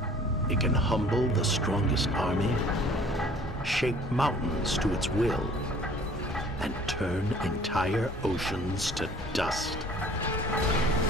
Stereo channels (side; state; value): both; normal; correlation 0.52